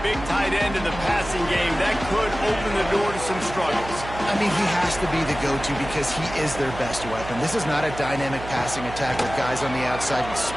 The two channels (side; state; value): right; noise; hum, 11 dB below the sound